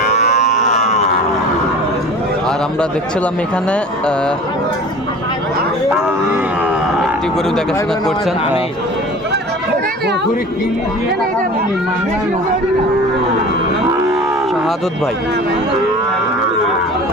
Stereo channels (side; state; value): both; normal; correlation 0.40